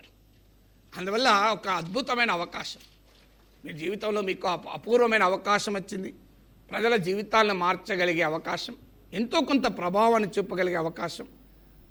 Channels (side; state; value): both; identical; correlation 1.00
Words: అందువల్ల ఒక అద్భుతమైన అవకాశం మీ జీవితంలో, మీకు అపూర్వమైన అవకాశం వచ్చింది. ప్రజల జీవితాలను మార్చగలిగే అవకాశం, ఎంతో కొంత ప్రభావాన్ని చూపగలిగే అవకాశం.